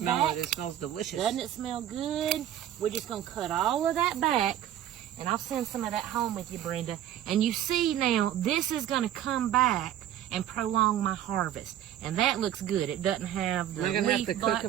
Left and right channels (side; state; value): left; quieter; 11.5 dB